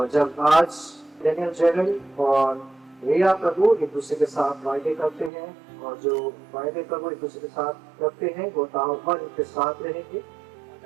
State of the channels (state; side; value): drops out; left; at 5.3 s